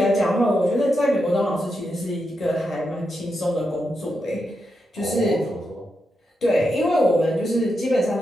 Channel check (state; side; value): normal; both; correlation 0.85